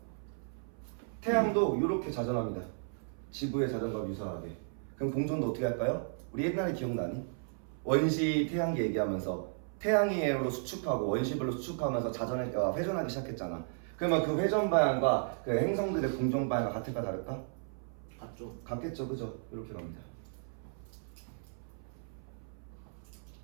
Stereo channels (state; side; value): silent; left; 55 dB below the other